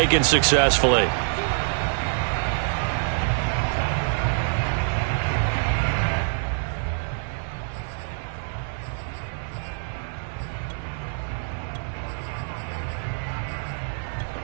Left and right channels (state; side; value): silent; left; 61 dB below the other